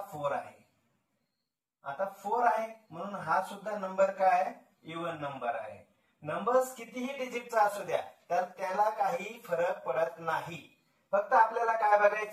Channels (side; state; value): both; identical; correlation 1.00